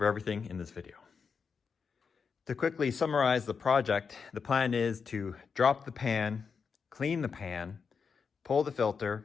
everything in this video. To quickly summarize the project, the plan is to drop the pan, clean the pan, pull the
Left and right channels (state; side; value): quieter; right; 5.8 dB